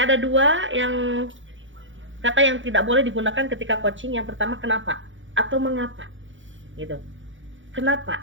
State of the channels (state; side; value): late; left; 0.56 ms